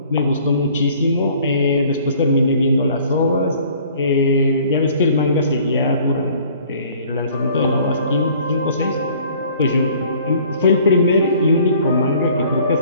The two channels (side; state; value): both; inverted; correlation -0.55